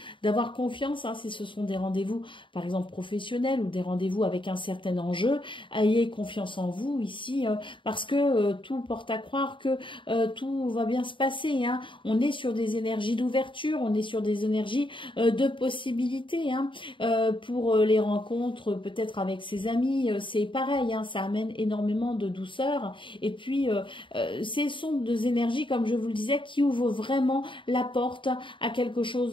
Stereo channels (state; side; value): late; right; 0.24 ms